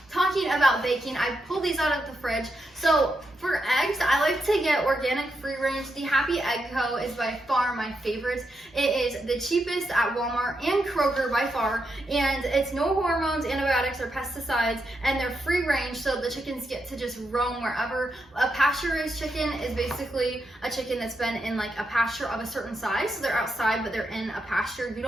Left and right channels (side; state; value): both; normal; correlation 0.84